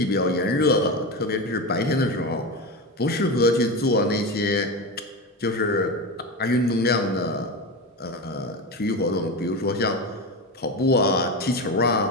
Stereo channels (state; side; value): normal; both; correlation 0.20